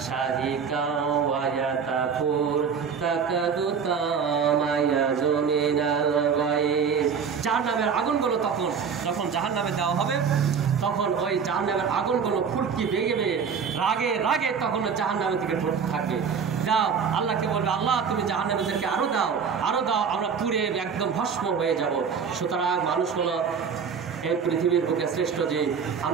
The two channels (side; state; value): left; quieter; 6.4 dB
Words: শাহিকা ওয়া ইয়াতাফুর তাকাদু তামায়াযু মিনাল গায়ব। জাহান্নামের আগুনগুলো যখন জাহান্নামে দেওয়া হবে, তখন ওই জাহান্নামের আগুনগুলো ফুলকি বেগে বেগে রাগে রাগে তখন জাহান্নামের দিকে পড়তে থাকবে। দাও, আল্লাহকে বলবে, আল্লাহ তুমি জাহান্নামীদেরকে আরো দাও, আমরা পুড়ে একদম ভস্ম হয়ে যাব। সুতরাং মানুষ হলো এই পৃথিবীর বুকে শ্রেষ্ঠ জীব,